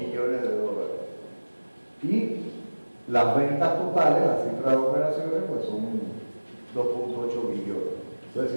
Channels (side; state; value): both; inverted; correlation -1.00